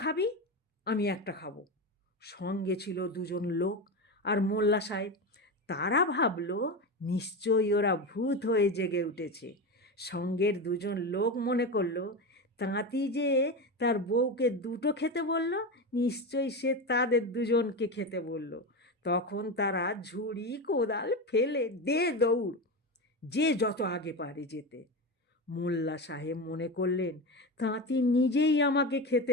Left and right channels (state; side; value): normal; both; correlation 0.20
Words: খাবি, আমি একটা খাবো। সঙ্গে ছিল 2জন লোক আর মোল্লা সাহেব। তারা ভাবলো নিশ্চয়ই ওরা ভূত হয়ে জেগে উঠেছে। সঙ্গের 2জন লোক মনে করলো তাঁতি যে তার বউকে 2টো খেতে বলল, নিশ্চয়ই সে তাদের 2জনকে খেতে বলল। তখন তারা ঝুড়ি কোদাল ফেলে দে দৌড়, যে যত আগে পারে যেতে। মোল্লা সাহেব মনে করলেন তাঁতি নিজেই আমাকে